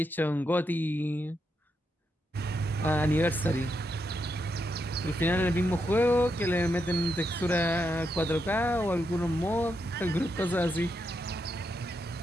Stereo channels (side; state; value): both; normal; correlation 0.82